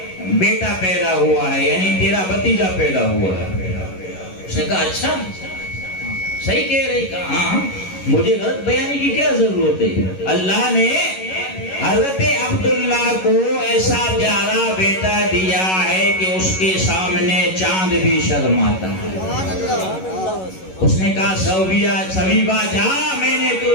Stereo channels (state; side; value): late; right; 11 ms